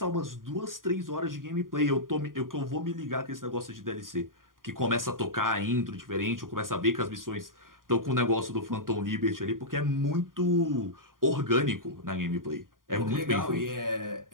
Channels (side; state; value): left; late; 0.90 ms